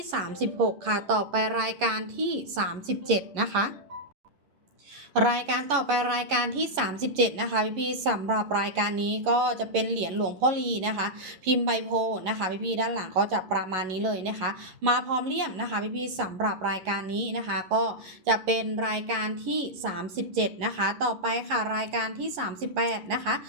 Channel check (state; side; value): late; left; 11 ms